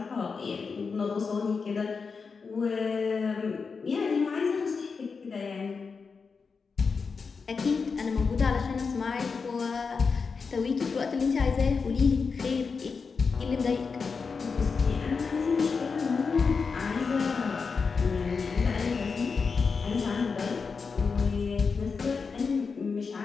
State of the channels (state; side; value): quieter; right; 5.1 dB